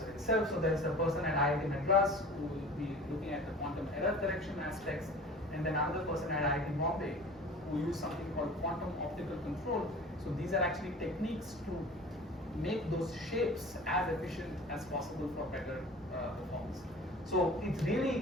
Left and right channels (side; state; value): both; normal; correlation 0.41